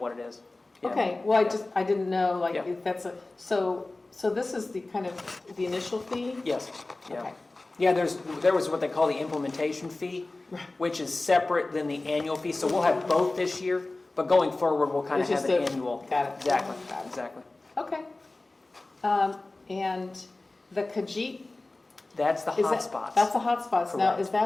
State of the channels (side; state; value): right; quieter; 3.1 dB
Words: it is. Yeah. okay, well, I didn't know, like, Yeah. if that's so this is the kind of the initial fee? Yes, yeah. Okay. Yeah, there was what they call the implementation fee, which is separate than the annual fee, so we'll have both this year, but going forward, we'll kind of It's have just an a- annual. got it. Exactly, Got it. exactly. Okay. And the Khajiit, That's the is that, hotspots. that's the hotspots. Now, Correct. is